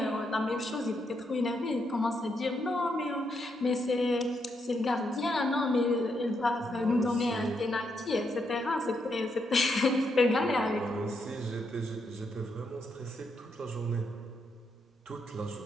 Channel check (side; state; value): both; normal; correlation 0.79